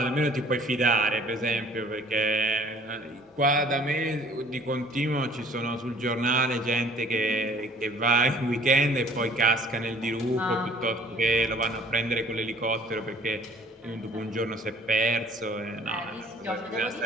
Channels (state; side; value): normal; both; correlation 0.54